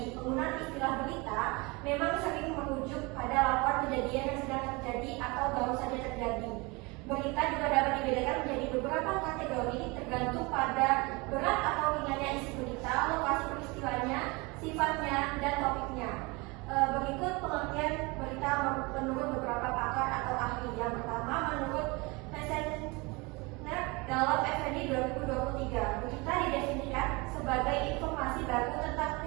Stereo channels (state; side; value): quieter; left; 26.1 dB